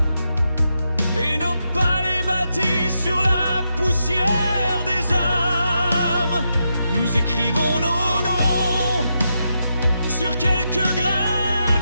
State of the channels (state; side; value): inverted; both; correlation -0.84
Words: et nos palais bâtis sur la poussière des âmes, nous écrivons nos noms sur quelques grains